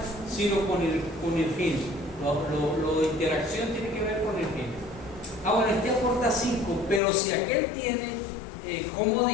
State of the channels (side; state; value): right; drops out; at 7.0 s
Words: sino con el gen. Lo de interacción tiene que ver con el gen. Bueno, este aporta 5, pero si aquel tiene